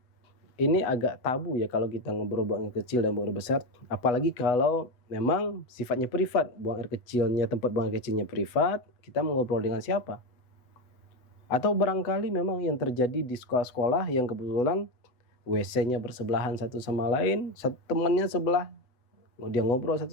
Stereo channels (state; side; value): late; right; 8.0 ms